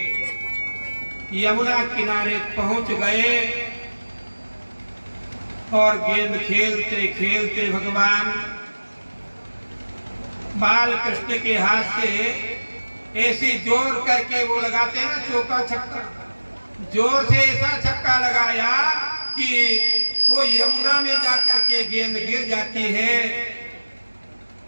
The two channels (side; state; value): both; inverted; correlation -1.00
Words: यमुना किनारे पहुंच गए और गेंद खेलते खेलते भगवान बाल कृष्ण के हाथ से ऐसी जोर करके वो लगाते हैं ना चौका छक्का, जोर से ऐसा छक्का लगाया कि वो यमुना में जाकर के गेंद गिर जाती है।